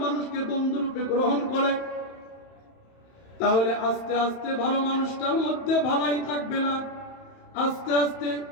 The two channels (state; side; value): late; right; 31 ms